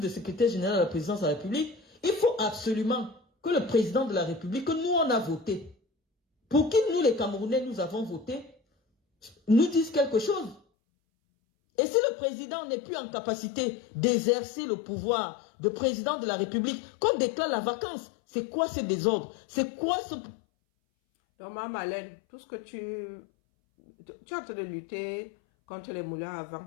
secrétaire général à la présidence de la République, il faut absolument que le président de la République, que nous on a voté, pour qui nous les Camerounais nous avons voté, nous dise quelque chose. Et si le président n'est plus en capacité d'exercer le pouvoir de président de la République, qu'on déclare la vacance, c'est quoi ce désordre? C'est quoi ce... Donc, Mme Malène, tout ce que tu es en train de lutter contre les moulins à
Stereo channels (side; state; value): right; drops out; at 10.6 s